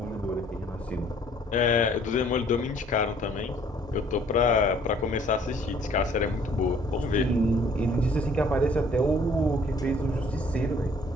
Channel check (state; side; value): normal; both; correlation 0.58